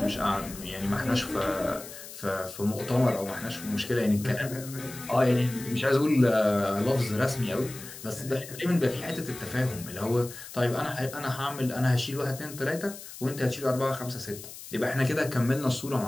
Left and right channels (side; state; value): left; noise; hiss, 14 dB below the sound